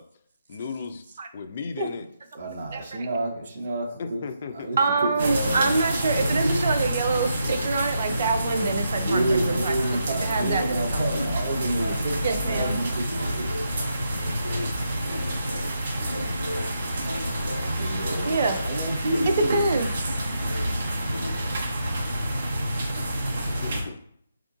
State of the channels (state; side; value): inverted; both; correlation -0.82